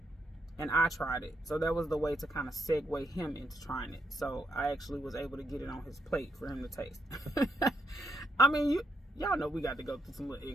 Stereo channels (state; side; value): normal; both; correlation 0.81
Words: And I tried it. So that was the way to kind of segue him into trying it. So I actually was able to get it on his plate for him to taste. I mean, y'all know we got to go through some little